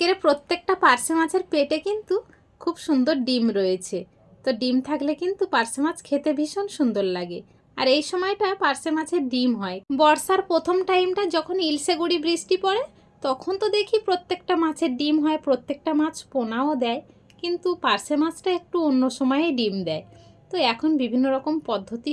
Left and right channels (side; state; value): both; identical; correlation 1.00